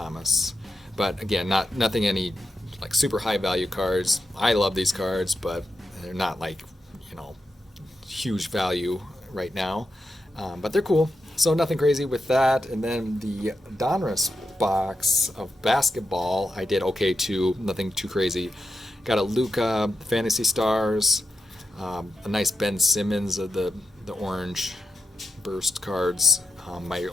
But again, nothing any super high value cards. I love these cards, but they're not huge value right now. But they're cool. So nothing crazy with that. And then the Donruss box of basketball, I did okay too. Nothing too crazy. Got a Luka Fantasy Stars. A nice Ben Simmons of the orange burst cards. My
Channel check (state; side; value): normal; both; correlation 0.88